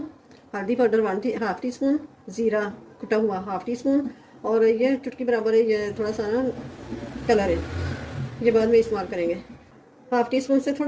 हल्दी पाउडर हाफ़ टी स्पून, ज़ीरा कुटा हुआ हाफ़ टी स्पून, और ये चुटकी बराबर है ये थोड़ा सा ना कलर है, ये बाद में इस्तेमाल करेंगे। हाफ़ टी स्पून से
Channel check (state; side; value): identical; both; correlation 1.00